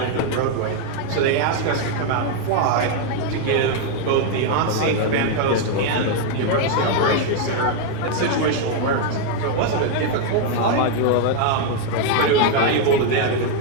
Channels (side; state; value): both; different; correlation 0.00